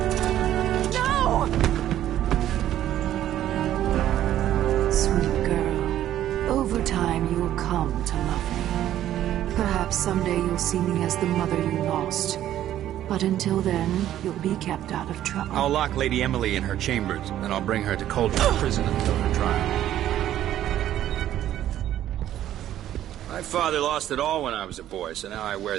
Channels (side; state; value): left; quieter; 12.2 dB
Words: No! Sweet girl, over time you'll come to love me. Perhaps someday you'll see me as the mother you lost. But until then, you'll be kept out of trouble. I'll lock Lady Emily in her chambers, and I'll bring her to Coldwood Prison until her trial. My father lost it all when I was a boy, so now I